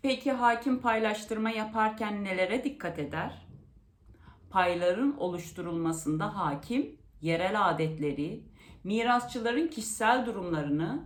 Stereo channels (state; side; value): identical; both; correlation 1.00